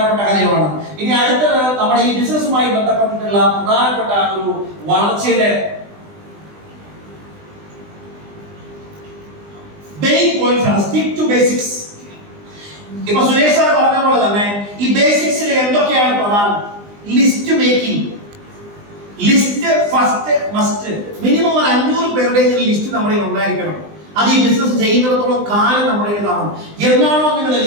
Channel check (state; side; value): late; left; 20 ms